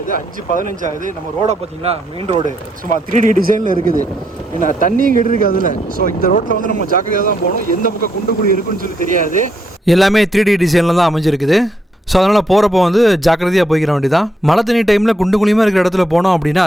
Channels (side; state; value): both; normal; correlation 0.76